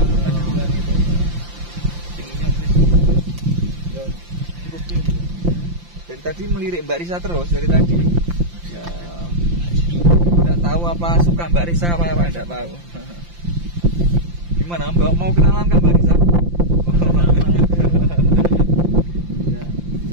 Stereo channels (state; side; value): late; left; 5.8 ms